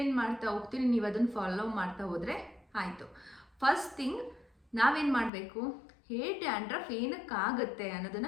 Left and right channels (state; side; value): drops out; right; at 5.3 s